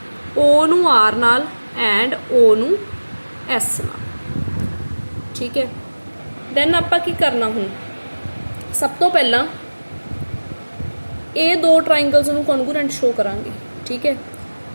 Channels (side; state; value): both; inverted; correlation -1.00